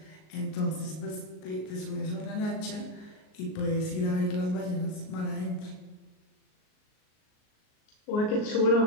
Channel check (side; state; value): right; late; 38 ms